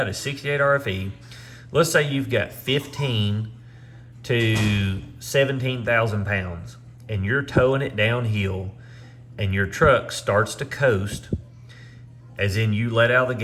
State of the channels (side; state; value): both; identical; correlation 1.00